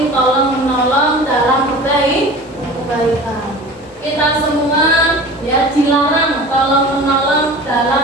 tolong menolong dalam kebaikan. Kita semua ya dilarang tolong menolong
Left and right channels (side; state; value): both; normal; correlation 0.38